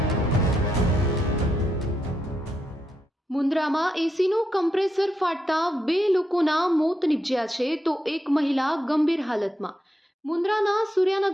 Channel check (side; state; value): both; normal; correlation 0.83